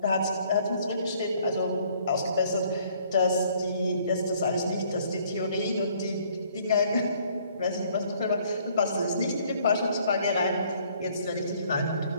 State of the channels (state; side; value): inverted; both; correlation -0.61